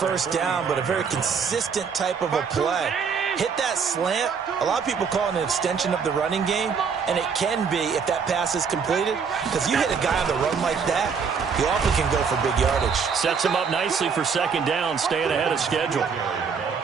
down, but a very consistent type of a play. Hit that slant. A lot of people call it an extension of the running game, and it can be if that pass is completed, because you hit a guy on the run like that, he often can go for big yardage. Sets him up nicely for second down, staying ahead of schedule.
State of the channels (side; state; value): left; quieter; 6.0 dB